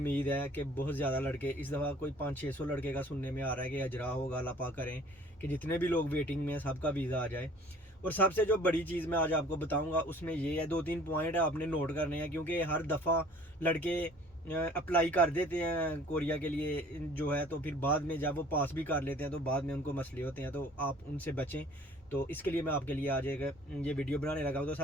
है कि बहुत ज़्यादा लड़के इस दफ़ा कोई 500-600 लड़के का सुनने में आ रहा है कि अजरा होगा। अल्लाह पाक करें कि जितने भी लोग वेटिंग में हैं सबका वीज़ा आ जाए। और सबसे जो बड़ी चीज़ मैं आज आपको बताऊंगा उसमें ये है, 2-3 पॉइंट है आपने नोट करने हैं। क्योंकि हर दफ़ा लड़के अप्लाई कर देते हैं कोरिया के लिए जो है, तो फिर बाद में जब वो पास भी कर लेते हैं तो बाद में उनको मसले होते हैं, तो आप उनसे बचें। तो इसके लिए मैं आपके लिए आज एक ये वीडियो बनाने लगा हूँ। तो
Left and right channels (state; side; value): normal; both; correlation 0.52